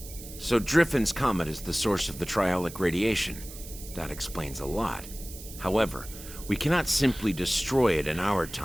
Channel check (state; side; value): noise; right; hiss, 14 dB below the sound